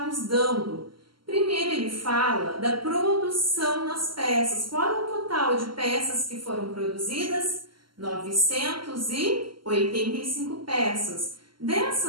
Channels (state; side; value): late; left; 0.73 ms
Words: nos dando? Primeiro, ele fala da produção das peças. Qual é o total de peças que foram produzidas? 985 peças.